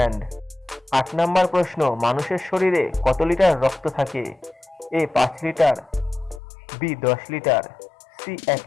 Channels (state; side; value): drops out; right; at 6.4 s